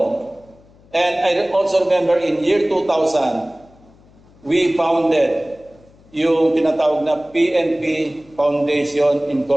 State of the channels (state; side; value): noise; left; hum, 28 dB below the sound